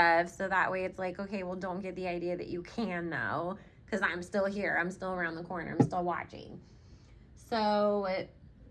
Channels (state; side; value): identical; both; correlation 1.00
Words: so that way it's like, okay, well, don't get the idea that you can, though, because I'm still here, I'm still around the corner, I'm still watching. So